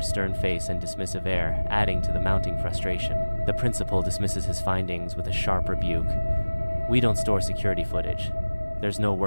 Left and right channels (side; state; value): both; inverted; correlation -1.00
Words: stern face and dismissive air adding to the mounting frustration. The principal dismisses his findings with a sharp rebuke. "We don't store security footage. There's no